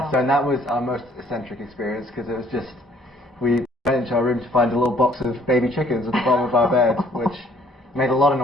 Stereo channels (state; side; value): normal; both; correlation 0.61